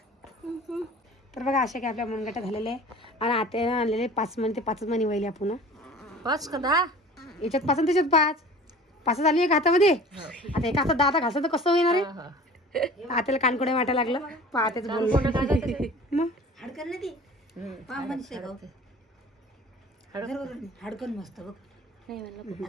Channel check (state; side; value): normal; both; correlation 0.43